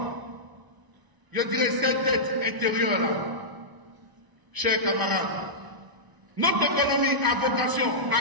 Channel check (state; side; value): late; left; 1.0 ms